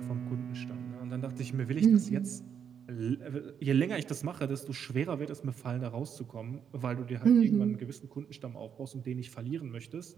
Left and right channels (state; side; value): quieter; left; 7.8 dB